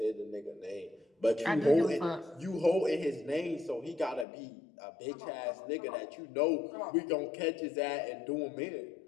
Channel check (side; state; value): right; drops out; at 4.2 s